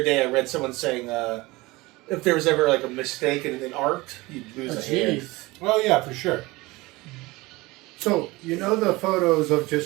day I read someone saying if there was ever like a mistake in an arc, you'd lose a hand. Jeez. Oh, yeah, for sure. So, you know the photos of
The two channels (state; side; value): quieter; left; 21.7 dB